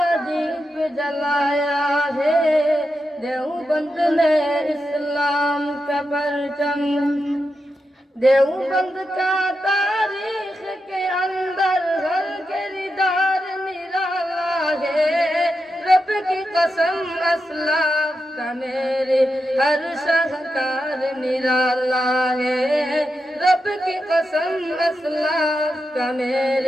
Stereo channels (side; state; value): both; normal; correlation 0.88